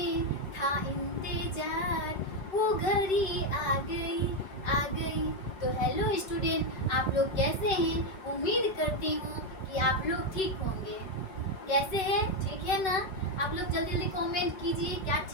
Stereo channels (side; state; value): right; late; 5.3 ms